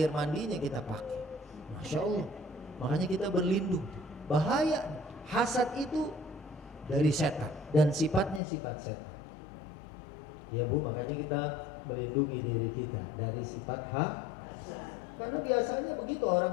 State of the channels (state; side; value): drops out; right; at 8.4 s